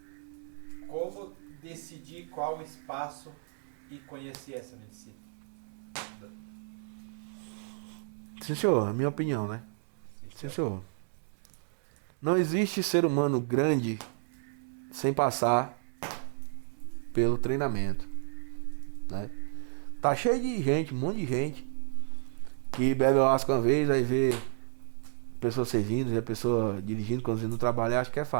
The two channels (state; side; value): silent; left; 57 dB below the other